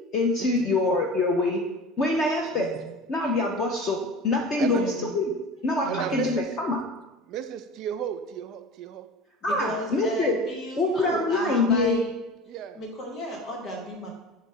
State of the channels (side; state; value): both; normal; correlation 0.36